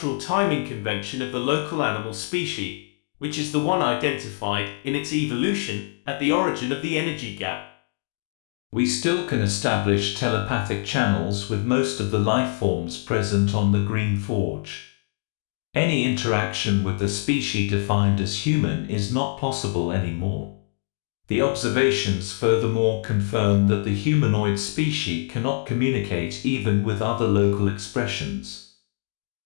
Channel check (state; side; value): silent; right; digital silence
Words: timing convention of the local animal species, which is the one identified in its evolution at the origin of the energy gap. We still can establish telepathic channels with most of the life forms present on the Green Forge. Any interaction with the species defined as human is not possible anymore. The observations furthermore confirm that the humanoid species cannot communicate even with other local expressions.